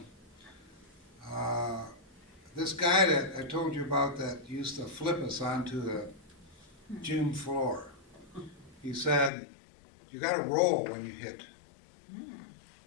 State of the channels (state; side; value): drops out; right; at 9.3 s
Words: this guy that I told you about that used to flip us onto the gym floor, he said, you got to roll when you hit,